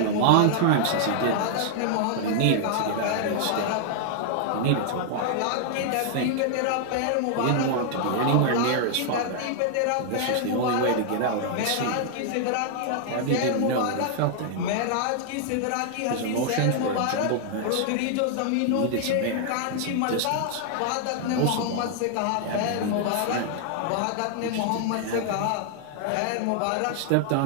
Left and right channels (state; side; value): different; both; correlation -0.01